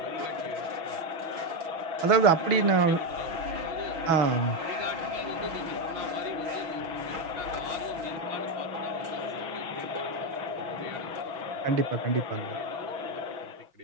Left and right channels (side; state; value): left; late; 6.2 ms